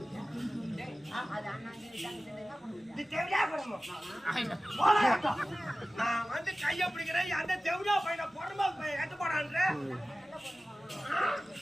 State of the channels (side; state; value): both; normal; correlation 0.96